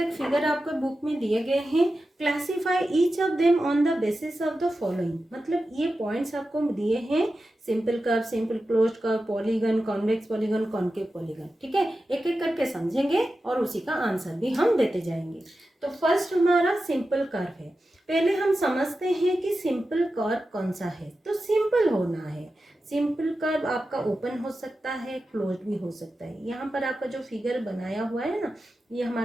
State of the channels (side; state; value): both; normal; correlation 0.92